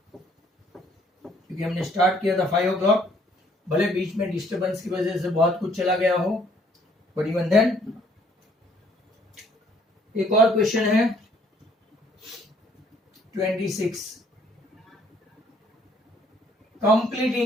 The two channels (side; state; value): both; normal; correlation 0.63